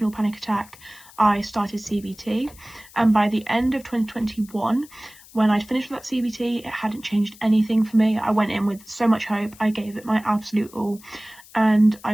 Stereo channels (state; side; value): noise; left; hiss, 22 dB below the sound